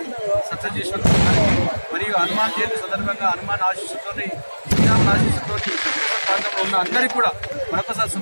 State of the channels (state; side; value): inverted; both; correlation -1.00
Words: సక్సెస్ చేసినందుకు మరియు హనుమాన్ జయంతి సందర్భంగా హనుమాన్ ఆశీస్సుతో శ్రీరాముల ఆశీస్సుతో ప్రాంతంలో ఉన్న అందరికీ కూడా మరొకసారి